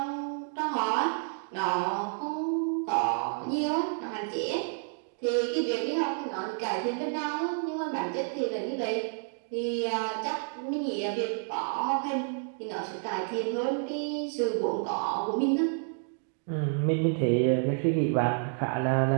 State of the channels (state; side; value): silent; left; 58 dB below the other